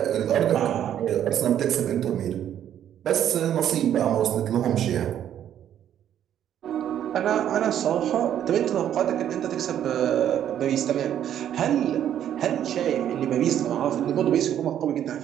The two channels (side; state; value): left; quieter; 10.4 dB